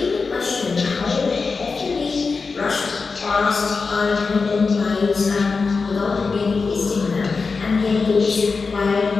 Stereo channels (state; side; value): quieter; right; 4.5 dB